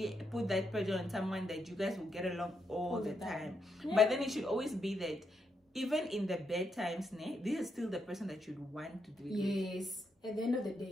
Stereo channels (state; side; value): normal; both; correlation 0.81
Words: put that pressure on someone that you guys will get along all the time. Yeah. But then it should always be that even in the bad times, this is still the person that you'd want to do it with. Yes. At the end of the